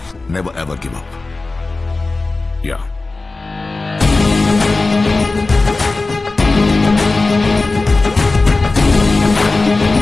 Never ever give up. Yeah.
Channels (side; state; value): right; quieter; 3.4 dB